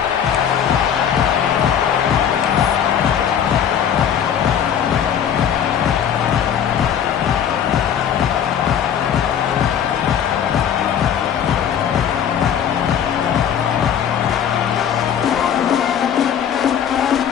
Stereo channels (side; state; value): right; quieter; 8.8 dB